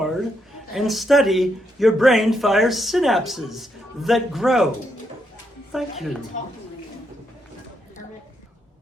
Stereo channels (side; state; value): both; normal; correlation 0.79